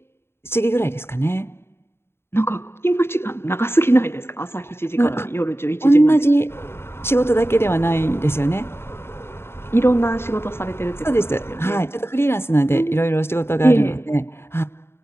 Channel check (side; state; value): right; late; 0.12 ms